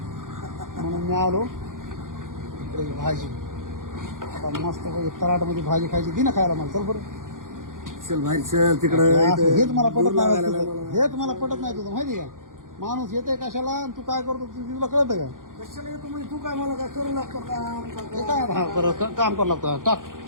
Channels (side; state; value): left; late; 0.89 ms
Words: म्हणून मी आलो इकडे. भाजी आता मस्त तराटमध्ये भाजी खायची दी ना खायला मला. चल बरं, चल बाहेर चल तिकडं. हेच मला पटत नाही तुझं. हेच मला पटत नाही तुझं, माहिती का? माणूस येते कशाला आणि तू काय करतो तुला कळतं का? कशाला येतो म्हणजे तू काय मला काय करू लागतो काम? हे काय हा बरं काम करावं लागतं. टाक